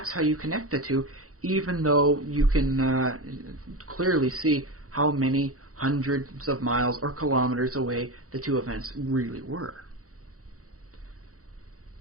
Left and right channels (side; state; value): left; late; 0.65 ms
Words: how you connect the two, even though you can clearly see how many hundreds of miles or kilometers away the two events really were.